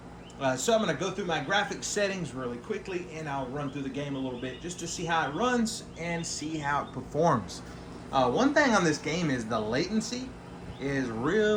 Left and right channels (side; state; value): both; identical; correlation 1.00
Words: So I'm going to go through my graphics settings really quickly and I'll run through the game a little bit just to see how it runs and see how it performs. One thing on this game is the latency is